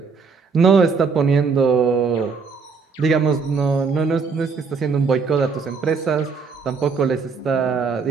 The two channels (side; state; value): left; quieter; 5.1 dB